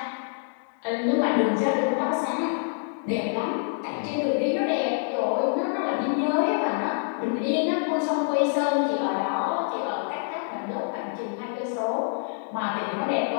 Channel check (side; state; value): right; silent; 61 dB below the other